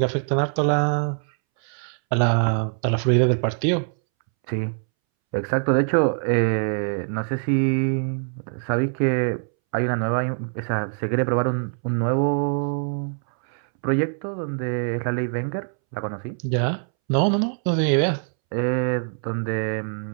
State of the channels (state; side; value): silent; left; 63 dB below the other